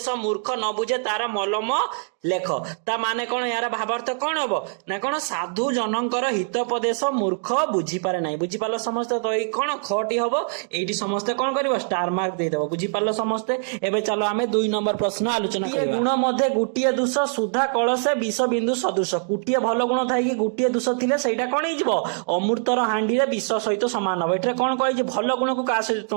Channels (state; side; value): silent; left; 57 dB below the other